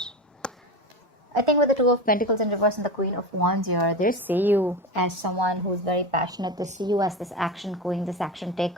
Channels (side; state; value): both; normal; correlation 0.23